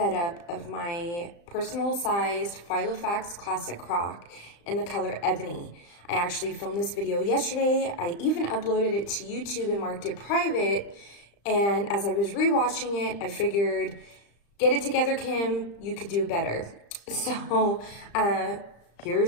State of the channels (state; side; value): late; right; 35 ms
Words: of my personal sized Filofax classic croc in the color Ebony. I actually filmed this video yesterday. I even uploaded it to YouTube and marked it private. And as I was rewatching it, I figured, get it together, Kim, you could do better. So